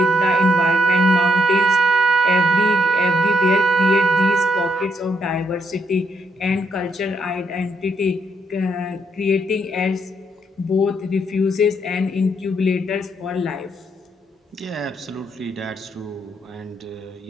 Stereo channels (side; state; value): both; normal; correlation 0.75